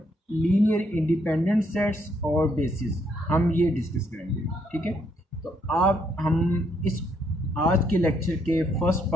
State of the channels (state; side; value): normal; both; correlation 0.72